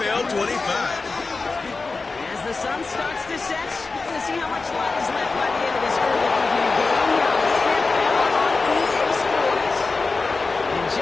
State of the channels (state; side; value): quieter; right; 3.9 dB